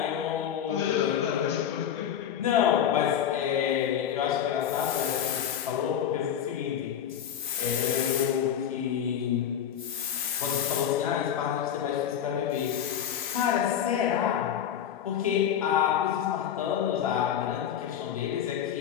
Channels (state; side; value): quieter; right; 9.4 dB